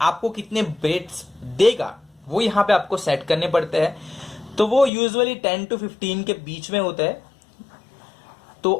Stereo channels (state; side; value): drops out; right; at 4.9 s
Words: आपको कितने ब्रेथ्स देगा वो यहां पे आपको सेट करने पड़ते हैं। तो वो यूजुअली 10 to 15 के बीच में होता है। तो